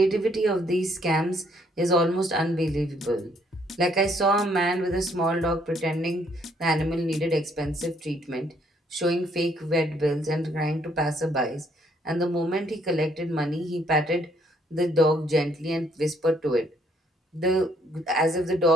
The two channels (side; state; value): both; normal; correlation 0.67